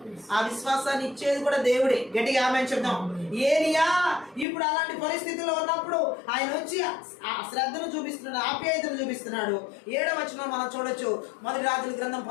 ఆ విశ్వాసాన్ని ఇచ్చేది కూడా దేవుడే. గట్టిగా ఆమె చెప్దాం. ఏలియా ఇప్పుడు అలాంటి పరిస్థితుల్లో ఉన్నప్పుడు ఆయన వచ్చి ఆ శ్రద్ధను చూపిస్తున్నాడు, ఆప్యాయతను చూపిస్తున్నాడు. 7వ వచనం మనం చూడొచ్చు. మొదటి రాజుల గ్రంథం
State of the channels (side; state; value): right; drops out; at 4.5 s